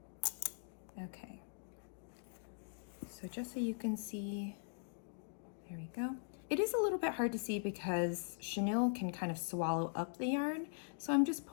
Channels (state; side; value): silent; right; digital silence